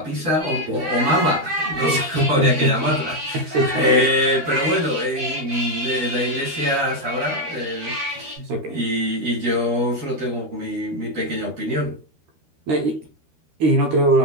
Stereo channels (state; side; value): late; left; 13 ms